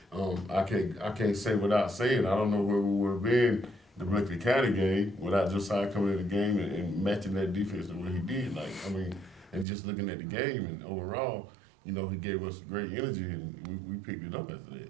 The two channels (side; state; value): left; drops out; at 9.7 s